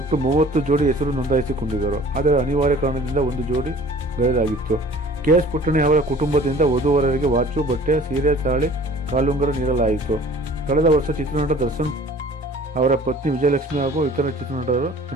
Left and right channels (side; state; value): both; normal; correlation 0.49